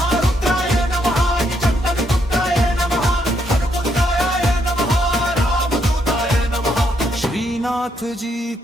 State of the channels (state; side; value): normal; both; correlation 0.75